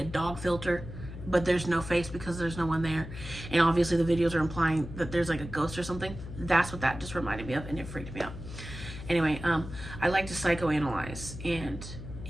dog filter, but there's no face because there's no one there. And obviously the videos are implying that there's like a ghost or something. That's what that just reminded me of, and it freaked me out. Anyway, I like to psychoanalyze and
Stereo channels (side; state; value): left; noise; hum, 11 dB below the sound